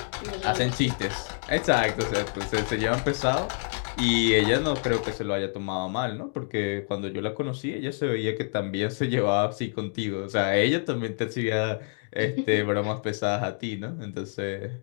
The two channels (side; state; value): right; silent; 60 dB below the other